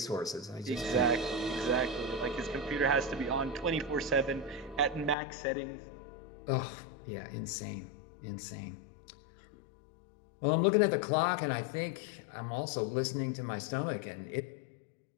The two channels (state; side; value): drops out; right; at 5.2 s